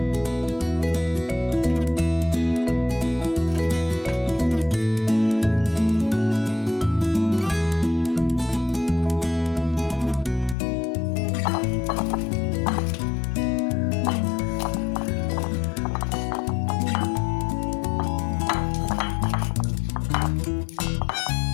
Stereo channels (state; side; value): drops out; right; at 10.6 s